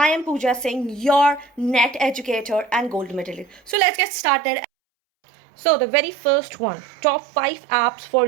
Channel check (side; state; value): left; drops out; at 3.8 s